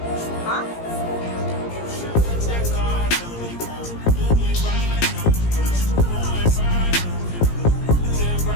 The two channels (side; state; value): right; late; 17 ms